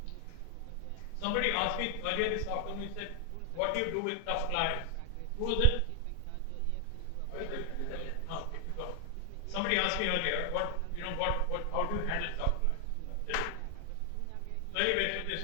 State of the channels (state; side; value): different; both; correlation 0.00